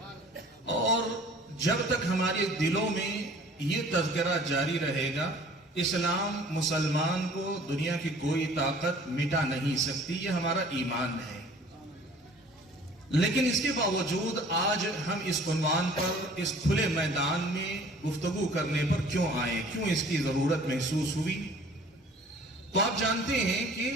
اور جب تک ہمارے دلوں میں یہ تذکرہ جاری رہے گا، اسلام مسلمان کو دنیا کی کوئی طاقت مٹا نہیں سکتی، یہ ہمارا ایمان ہے. لیکن اس کے باوجود آج ہم اس عنوان پر، اس کھلے میدان میں گفتگو کرنے پر کیوں آئے، کیوں اس کی ضرورت محسوس ہوئی؟ تو آپ جانتے ہیں کہ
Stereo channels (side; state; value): both; normal; correlation 0.51